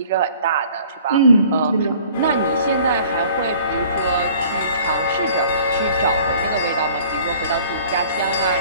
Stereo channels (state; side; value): inverted; both; correlation -0.51